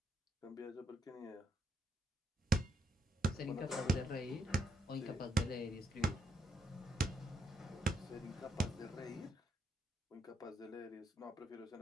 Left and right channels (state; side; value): normal; both; correlation 0.77